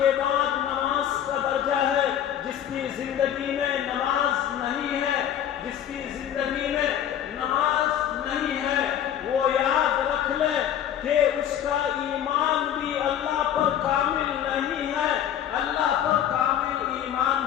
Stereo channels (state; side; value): quieter; right; 10.2 dB